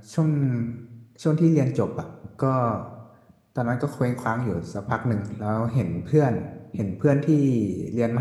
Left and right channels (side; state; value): both; identical; correlation 1.00